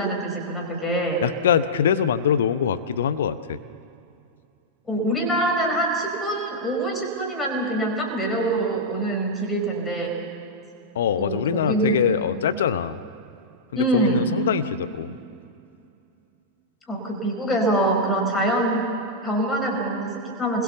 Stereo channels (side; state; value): both; normal; correlation -0.09